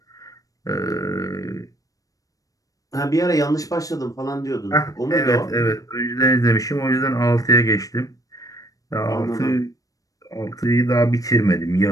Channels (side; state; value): right; late; 0.17 ms